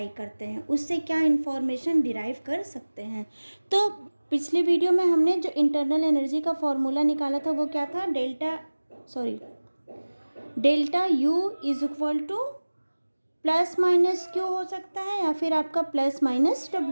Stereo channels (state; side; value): inverted; both; correlation -1.00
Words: करते हैं, उससे क्या इंफॉर्मेशन डिराइव कर सकते हैं। तो पिछले वीडियो में हमने जो इंटरनल एनर्जी का फॉर्मूला निकाला था वो क्या था, delta U is equal two plus minus Q हो सकता है या फिर आपका प्लस माइनस